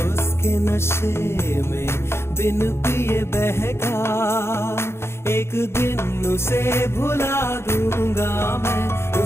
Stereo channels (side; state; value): right; late; 0.12 ms